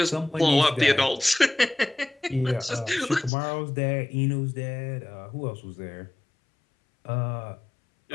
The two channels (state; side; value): drops out; right; at 3.3 s